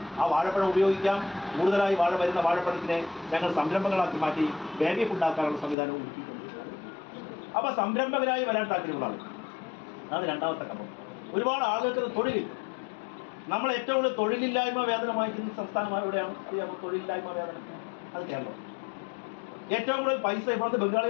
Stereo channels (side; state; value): right; drops out; at 5.8 s